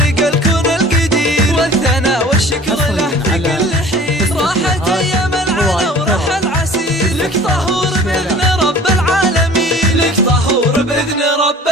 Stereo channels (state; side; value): normal; both; correlation 0.45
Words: الكون القدير والثناء والشكر له في كل حين. راحت ايام العنا وراح العسير، لك طهور باذن رب العالمين، لك طهور باذن